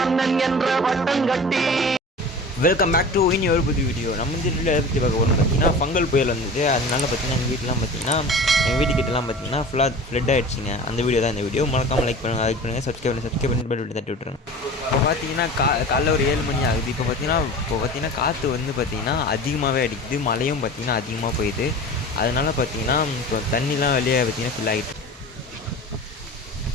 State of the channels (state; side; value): normal; both; correlation 0.37